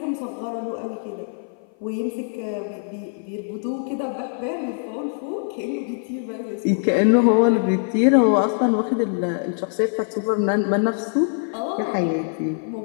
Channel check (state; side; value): silent; right; 55 dB below the other